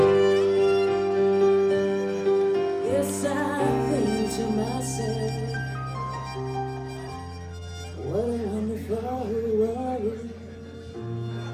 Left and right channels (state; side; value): identical; both; correlation 1.00